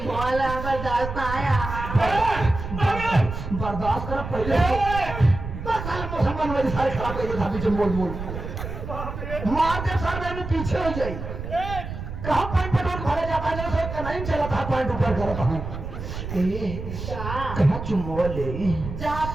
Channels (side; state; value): right; noise; rumble, 7 dB below the sound